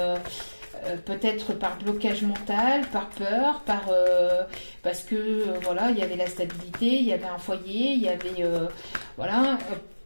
Peut-être par blocage mental, par peur, parce que voilà, il y avait la stabilité, il y avait un foyer, il y avait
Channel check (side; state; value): both; inverted; correlation -1.00